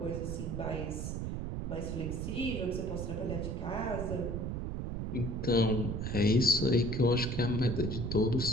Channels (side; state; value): right; noise; rumble, 3 dB below the sound